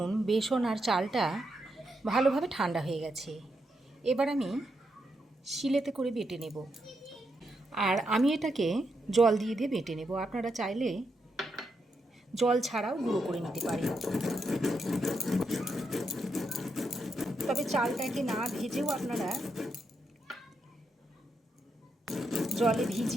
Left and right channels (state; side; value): normal; both; correlation 0.82